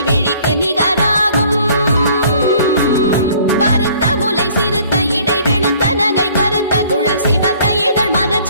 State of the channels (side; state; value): both; inverted; correlation -0.56